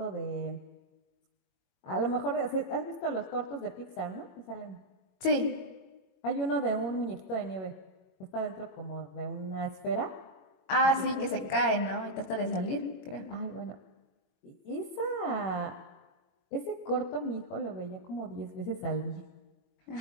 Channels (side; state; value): right; late; 21 ms